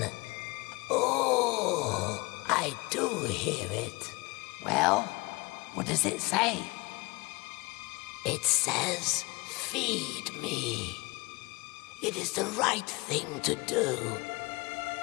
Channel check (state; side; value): quieter; right; 24.7 dB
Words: Oh, I do hear it. Well, what does it say? It says, feed me. It is the right thing to do.